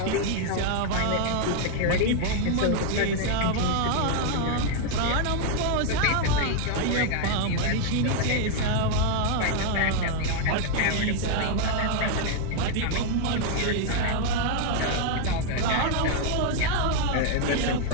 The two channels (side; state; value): both; different; correlation 0.00